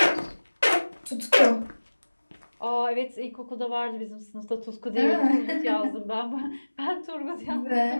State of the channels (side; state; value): both; inverted; correlation -1.00